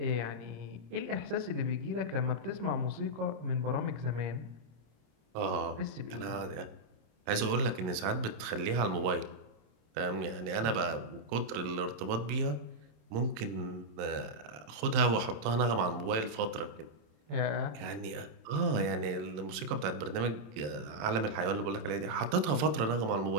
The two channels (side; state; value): left; late; 27 ms